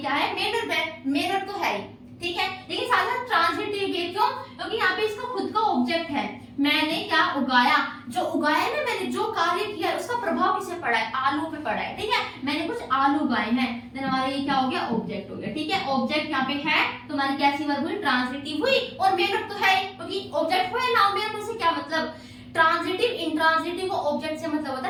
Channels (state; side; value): identical; both; correlation 1.00